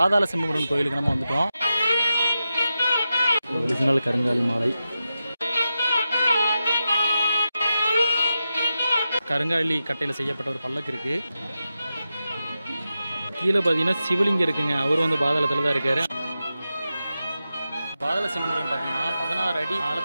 செம்புமுருகன் கோயிலுக்கு நம்ம வந்துட்டோம். ஒரிஜினல் கருங்காலி மாலை. கருங்காலி கட்டையில் செய்யப்பட்ட ஒரு பல்லக்கு இருக்குது. கீழே பார்த்தீங்கன்னா சிவலிங்கம் இருக்குங்க. அவர் வந்து பாதாளத்தில் தான் இருக்காரு. பாதாள செம்புமுருகன் பார்த்தீங்கன்னா 16 அடி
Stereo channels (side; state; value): both; inverted; correlation -0.90